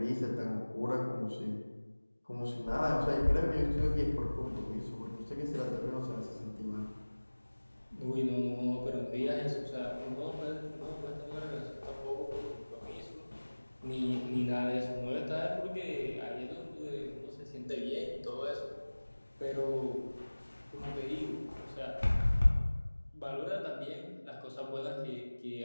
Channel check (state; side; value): inverted; both; correlation -1.00